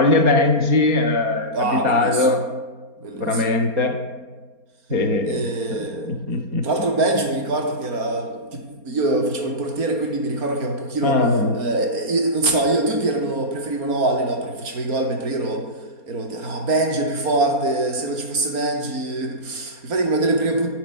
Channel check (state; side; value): late; left; 4.3 ms